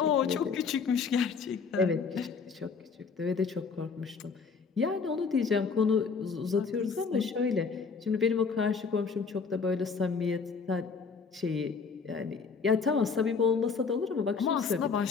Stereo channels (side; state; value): right; quieter; 5.2 dB